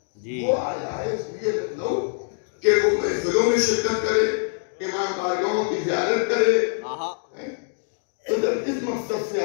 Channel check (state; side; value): silent; right; 61 dB below the other